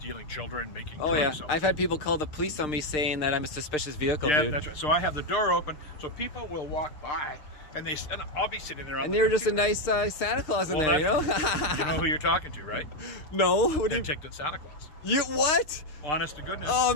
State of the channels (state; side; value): late; right; 6.5 ms